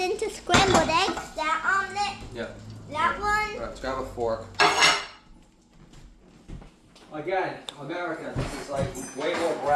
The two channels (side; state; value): both; identical; correlation 1.00